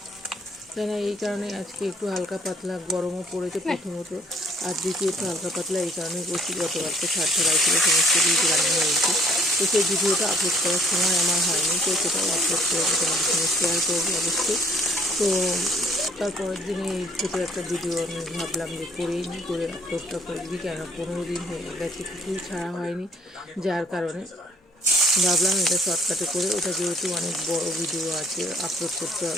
তাই না, এই কারণে আজকে একটু হালকা পাতলা, গরমও পড়েছে প্রথমত, আর দ্বিতীয়ত হালকা পাতলা এই কারণেই করছি, গতকালকে ছাড় ছাড়াই ছিল, সমস্ত কিছু রান্না হয়েছে। তো সেই ভিডিওটা আপলোড করার সময় আমার হয়নি, তো সেটাও আপলোড করে তোমাদের সঙ্গে শেয়ার করবো অবশ্যই। তো তারপরের দিনে এই ছোটো একটা ভিডিও আমি ভাবলাম যে করেই নিই, করে আপলোডটা করে দিই, কেন 15 দিন হয়ে গেছে কিছুই ছাড়া হয়নি, যার কারণে ভাবলাম এটা শর্টকাটে করে, ওটা যেহেতু অনেক বড় ভিডিও আছে, আপলোড করতে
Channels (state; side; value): normal; both; correlation 0.60